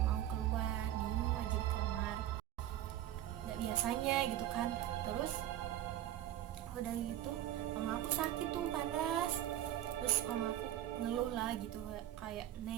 mau keluar, diem aja di kamar, nggak biasanya gitu kan. Terus udah gitu mama aku sakit tuh, panas. Terus mama aku ngeluh lah gitu, kayak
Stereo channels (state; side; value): quieter; left; 12.7 dB